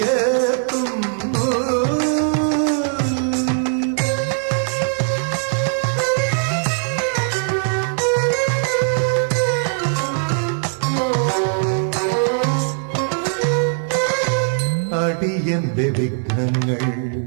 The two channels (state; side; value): silent; left; digital silence